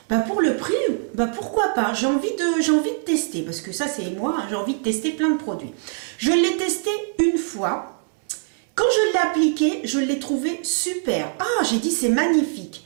bah pour le prix, bah pourquoi pas, j'ai envie de tester. Parce que ça c'est moi, hein, j'ai envie de tester plein de produits. Je l'ai testé une fois. Quand je l'ai appliqué, je l'ai trouvé super. Ah, j'ai dit c'est magnifique.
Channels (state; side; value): silent; left; 64 dB below the other